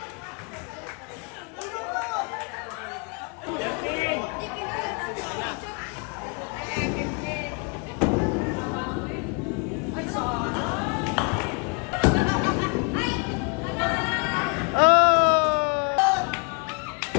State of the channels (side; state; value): right; quieter; 34.9 dB